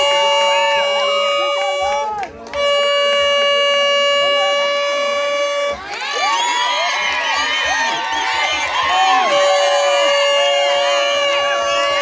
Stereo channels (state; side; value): identical; both; correlation 1.00